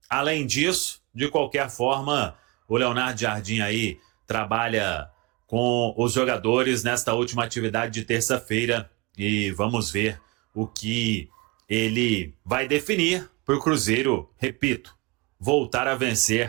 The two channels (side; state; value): left; quieter; 24.6 dB